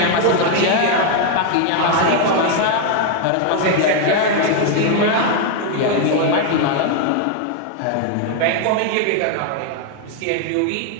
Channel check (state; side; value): different; both; correlation 0.00